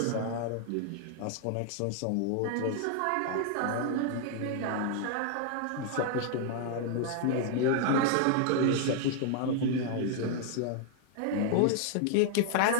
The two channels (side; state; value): both; different; correlation 0.00